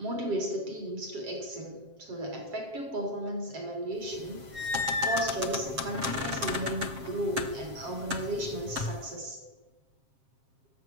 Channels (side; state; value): left; late; 7.5 ms